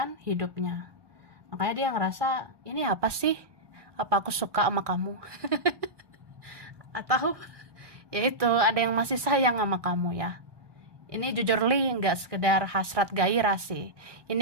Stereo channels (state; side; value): late; left; 1.2 ms